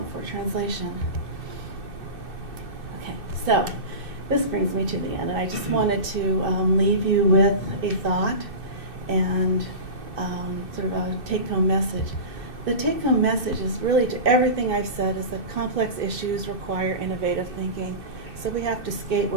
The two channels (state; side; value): late; left; 2.6 ms